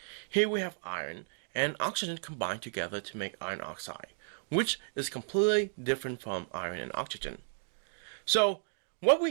Here we have iron and oxygen combined together to make iron oxide, which is completely different from iron and oxygen. So, what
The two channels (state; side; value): silent; left; digital silence